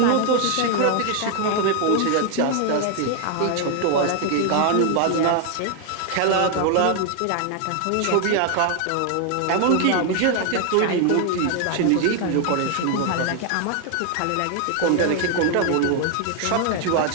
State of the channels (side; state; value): both; different; correlation 0.00